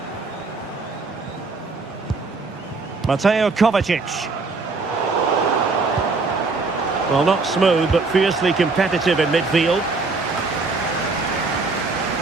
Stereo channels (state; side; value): quieter; left; 3.9 dB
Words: Mateo Kovacic. Well, not smooth, but fiercely competitive in midfield.